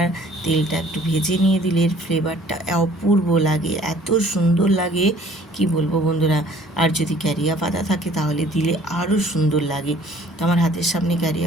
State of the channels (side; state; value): both; normal; correlation 0.55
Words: তেলটা একটু ভেজে নিয়ে দিলে এর ফ্লেভারটা অপূর্ব লাগে, এত সুন্দর লাগে কি বলবো বন্ধুরা। আর যদি ক্যারিয়া পাতা থাকে তাহলে দিলে আরও সুন্দর লাগে। তো আমার হাতের সামনে